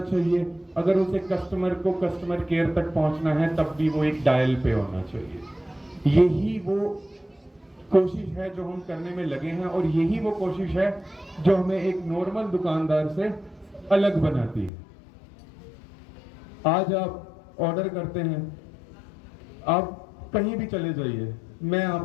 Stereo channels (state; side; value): drops out; right; at 14.7 s